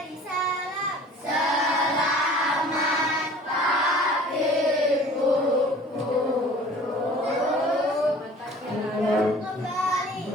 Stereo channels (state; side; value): normal; both; correlation 0.47